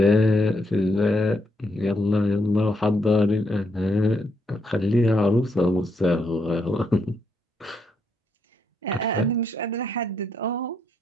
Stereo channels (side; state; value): both; normal; correlation 0.76